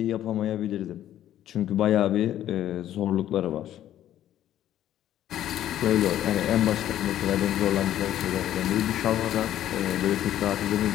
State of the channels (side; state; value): right; quieter; 12.0 dB